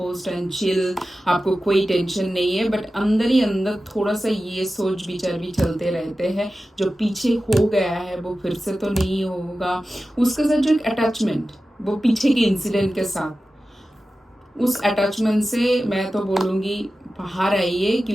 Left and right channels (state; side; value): normal; both; correlation 0.94